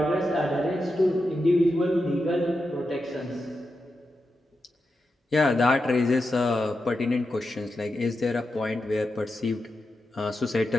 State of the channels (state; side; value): normal; both; correlation 0.89